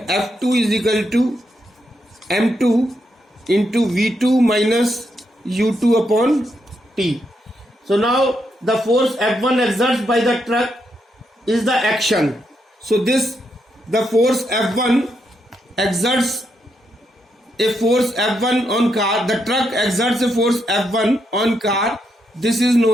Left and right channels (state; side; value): normal; both; correlation 0.80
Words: F2 is equal to m2 into v2 minus u2 upon t. So now the force F1 exerts by the truck is the action. So the force F1 exerts a force F1 on car. The truck exerts a force F1 on car. This is